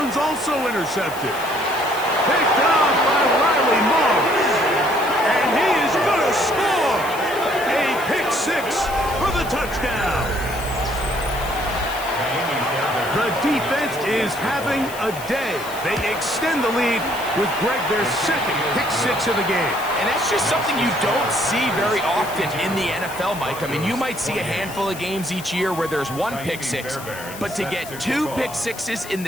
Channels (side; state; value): left; noise; hiss, 14 dB below the sound